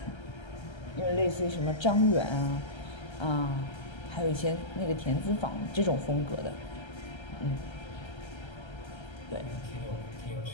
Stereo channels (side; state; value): right; late; 1.3 ms